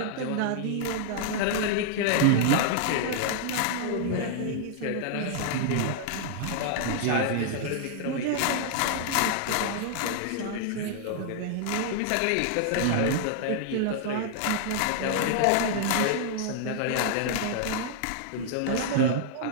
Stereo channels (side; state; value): both; different; correlation -0.01